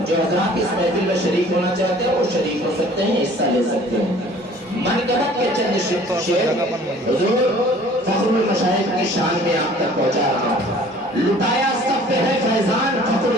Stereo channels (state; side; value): normal; both; correlation 0.51